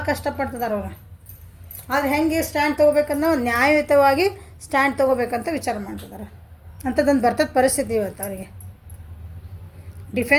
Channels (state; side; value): identical; both; correlation 1.00